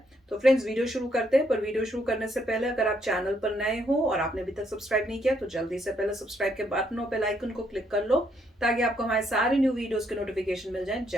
तो फ्रेंड्स, वीडियो शुरू करते हैं, पर वीडियो शुरू करने से पहले अगर आप चैनल पर नए हो और आपने अभी तक सब्सक्राइब नहीं किया तो जल्दी से पहले सब्सक्राइब के बटन और बेल आइकन को क्लिक कर लो ताकि आपको हमारे सारे न्यू वीडियोस के नोटिफिकेशन मिल जाएं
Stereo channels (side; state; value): both; normal; correlation 0.73